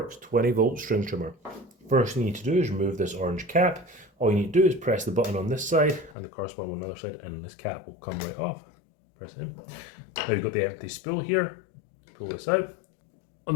20-volt string trimmer. First thing you need to do is remove this orange cap. All you need to do is press the button on this side and the corresponding one on the other side, and this cap will come right off. Press it in. Now you've got the empty spool here. Pull this out. On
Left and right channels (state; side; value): drops out; right; at 6.2 s